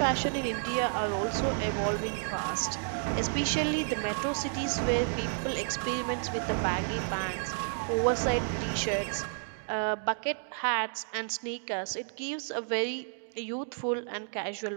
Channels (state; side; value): silent; left; digital silence